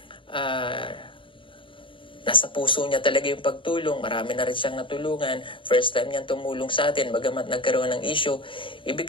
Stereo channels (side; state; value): right; late; 0.25 ms